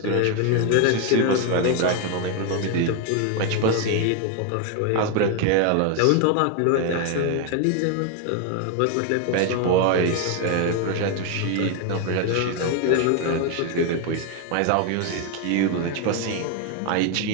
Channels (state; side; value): different; both; correlation 0.01